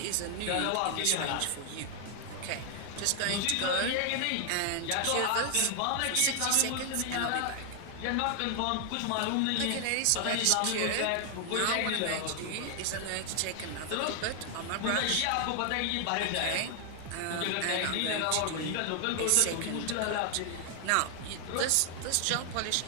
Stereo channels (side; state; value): both; different; correlation 0.00